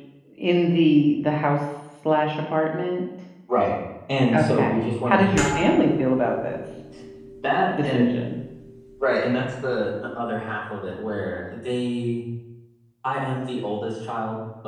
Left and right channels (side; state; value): both; identical; correlation 1.00